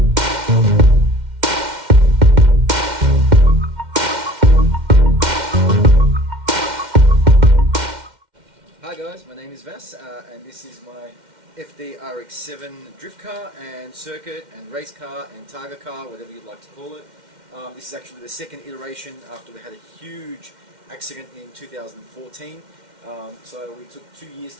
Hi guys, my name is Vas and this is my FD RX-7 drift car and circuit and race car and targa car, whatever you'd like to call it. This is actually the second iteration after we had a huge accident in 2014. So we took 2 years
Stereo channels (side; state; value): left; late; 2.1 ms